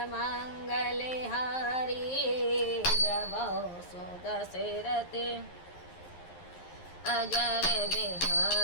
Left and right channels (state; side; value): late; right; 11 ms